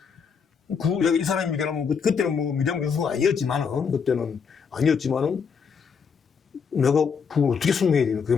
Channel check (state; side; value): quieter; right; 6.2 dB